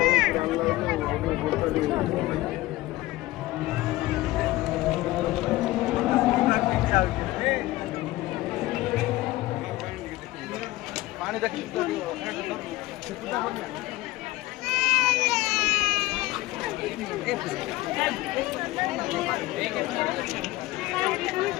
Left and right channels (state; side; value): quieter; right; 18.1 dB